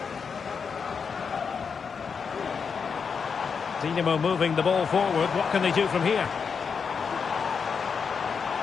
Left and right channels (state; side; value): quieter; right; 6.0 dB